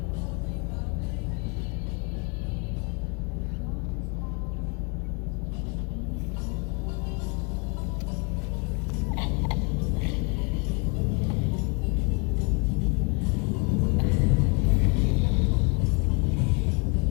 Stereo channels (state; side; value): quieter; right; 32.0 dB